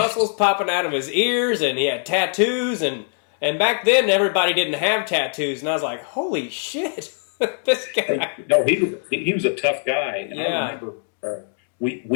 popping out of his ears, and he had tattoos, and back then everybody didn't have tattoos, and I was like, holy shit, this guy. No, he was a tough guy. And yeah. I remember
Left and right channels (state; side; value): silent; right; 64 dB below the other